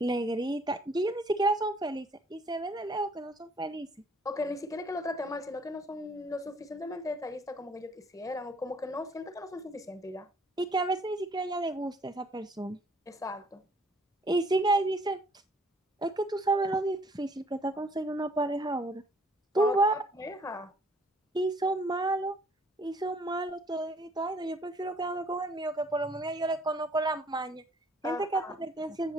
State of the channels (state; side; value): normal; both; correlation 0.60